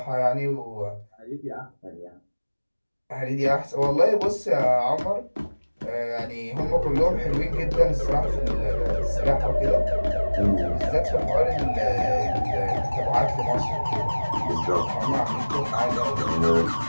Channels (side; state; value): both; inverted; correlation -1.00